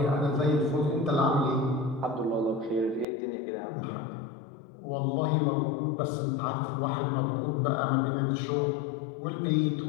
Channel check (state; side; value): drops out; right; at 3.1 s